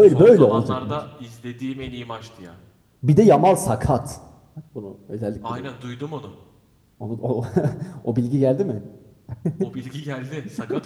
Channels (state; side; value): identical; both; correlation 1.00